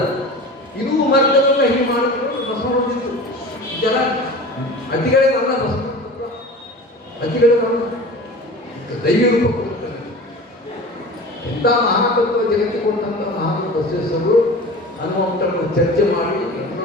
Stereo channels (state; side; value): normal; both; correlation 0.36